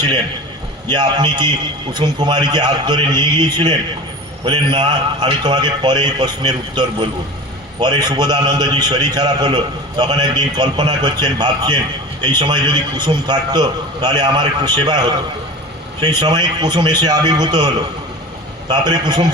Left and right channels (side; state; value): both; normal; correlation 0.34